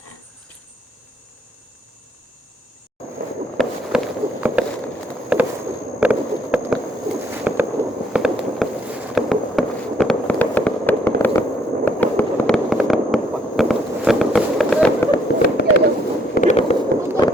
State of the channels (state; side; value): normal; both; correlation 0.67